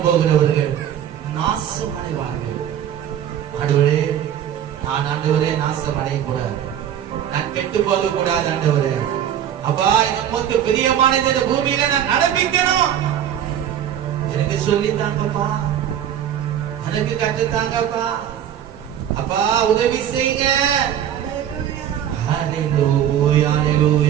போகிறவர்கள் நாசம் அடைவார்கள் ஆண்டவரே. நான் ஆண்டவரே நாசம் அடையக்கூடாது, நான் கெட்டு போக கூடாது ஆண்டவரே. அப்பா, நமக்கு பிரியமானது இந்த பூமியில நான் நடப்பிக்கணும். எனக்கு சொல்லித்தாங்கப்பா, எனக்கு கற்றுத்தாங்கப்பா. அப்பா, உதவி செய்யுங்க. ஹல்லேலூயா,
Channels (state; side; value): quieter; left; 10.1 dB